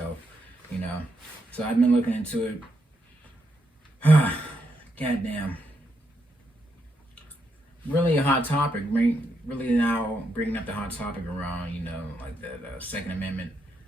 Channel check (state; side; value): normal; both; correlation 0.80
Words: you know. So I've been looking into it. Goddamn, really a hot topic. Really now bringing up the hot topic around, you know, like the Second Amendment